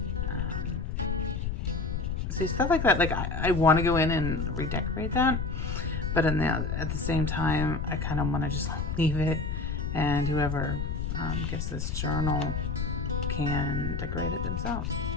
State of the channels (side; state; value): left; noise; rumble, 2 dB below the sound